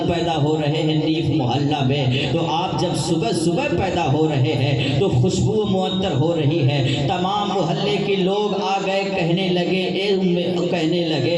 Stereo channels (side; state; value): both; identical; correlation 1.00